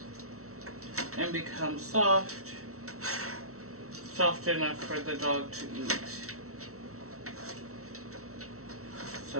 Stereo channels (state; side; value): late; left; 0.64 ms